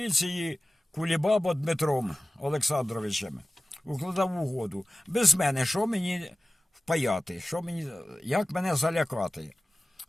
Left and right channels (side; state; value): both; normal; correlation 0.96